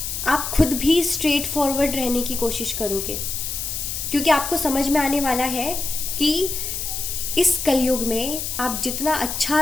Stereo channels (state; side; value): noise; left; hiss, 4 dB below the sound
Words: आप खुद भी स्ट्रेट फॉरवर्ड रहने की कोशिश करोगे, क्योंकि आपको समझ में आने वाला है कि इस कलयुग में आप जितना